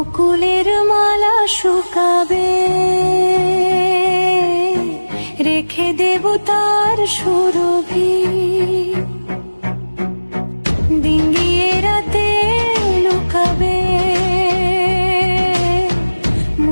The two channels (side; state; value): both; inverted; correlation -1.00